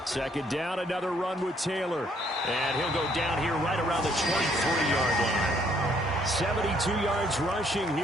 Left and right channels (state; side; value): normal; both; correlation 0.67